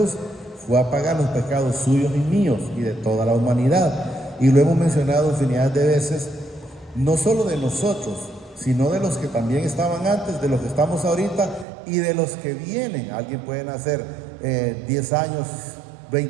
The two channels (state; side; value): drops out; left; at 11.7 s